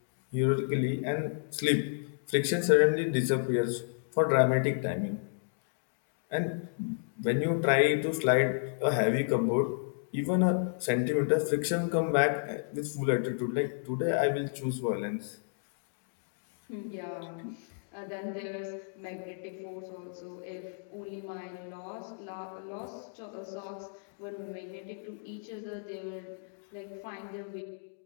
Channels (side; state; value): right; silent; digital silence